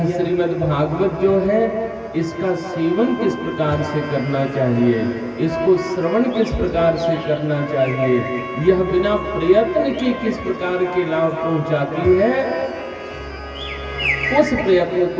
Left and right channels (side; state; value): both; identical; correlation 1.00